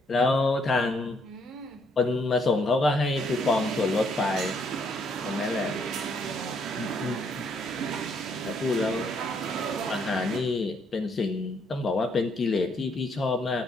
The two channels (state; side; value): normal; both; correlation 0.70